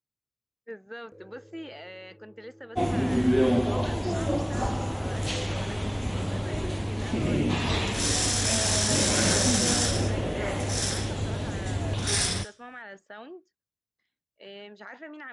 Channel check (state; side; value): identical; both; correlation 1.00